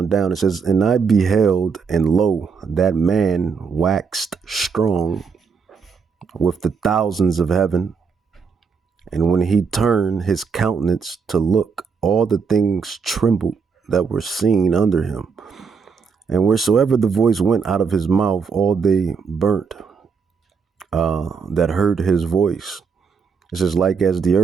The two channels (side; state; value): left; quieter; 5.7 dB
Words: down. It says, and I beheld, and lo, that man waxed strong with the thousands of heaven. And when he turned his countenance to look, all the things trembled that were seen under him. And wheresoever the voice went out of his mouth, all they burnt that heard his voice. It says, like as the